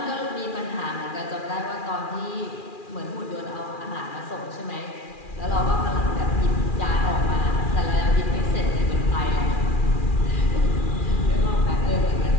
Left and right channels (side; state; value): right; late; 2.4 ms